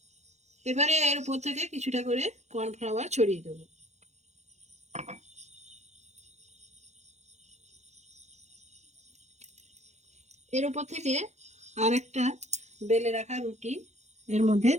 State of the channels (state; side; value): late; left; 0.33 ms